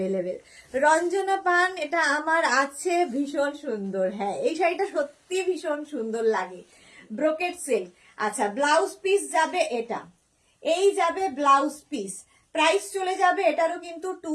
Ranjana পান, এটা আমার আছে, ভীষণ সুন্দর। হ্যাঁ এই শাড়িটা সত্যি ভীষণ সুন্দর লাগে, ব্রোকেট সিল্ক। আচ্ছা ব্লাউজ পিস যাবে এটা, এই যাবে ব্লাউজ পিস। প্রাইস চলে যাবে এটারও কিন্তু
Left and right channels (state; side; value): identical; both; correlation 1.00